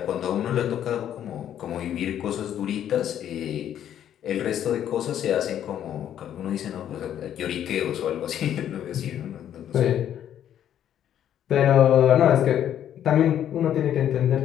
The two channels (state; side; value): quieter; right; 10.4 dB